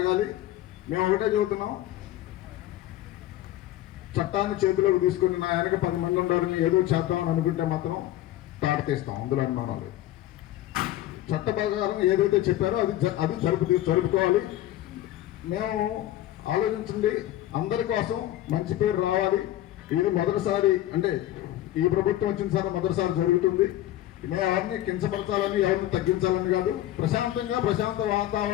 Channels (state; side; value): quieter; right; 14.0 dB